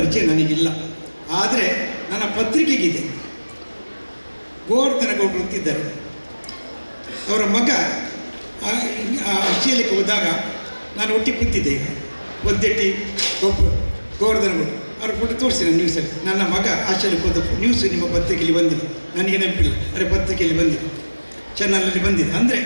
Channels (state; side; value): inverted; both; correlation -1.00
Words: ನನಗಿಲ್ಲ. ಆದರೆ ನನ್ನ ಪತ್ರಿಕೆಗಿದೆ. ಗೋವರ್ಧನ ಗೌಡರು ಅಂತಿದ್ದಾರೆ, ಅವರ ಮಗ ಆಸ್ಟ್ರೇಲಿಯಾಕ್ಕೆ ಹೋದಾಗ ನಾನು ಒಟ್ಟಿಗೆ ಕೂತಿದ್ದೆ. ಈಗ ಒದ್ದೆಟ್ಟಿ ಗೋವರ್ಧನ ಗೌಡರು ಅವ್ರ ಫೋಟೋ ತೋರಿಸಿದೆ ನ್ಯೂಸಲ್ಲಿ. ನನ್ನ ಮಗ ಆಸ್ಟ್ರೇಲಿಯಾಕ್ಕೆ ಹೋದ ನ್ಯೂಸ್ ನಿಮ್ಮ ಪತ್ರಿಕೆಯಲ್ಲಿ ಬಂದಿದೆ, ನನಗೆ ನೆನಪಿಲ್ಲ, ಅರೆ ಪತ್ರಿಕೆಯಲ್ಲಿ ಬಂದಿದೆ, ಚಾನಲಲ್ಲಿ ಬಂದಿದೆ. ಅಂದರೆ